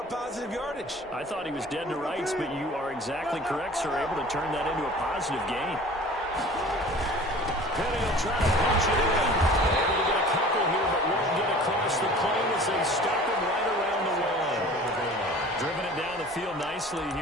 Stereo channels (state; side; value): normal; both; correlation 0.44